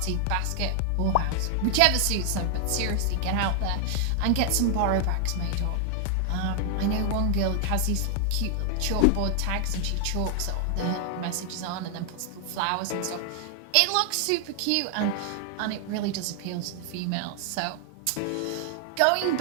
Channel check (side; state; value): both; different; correlation 0.00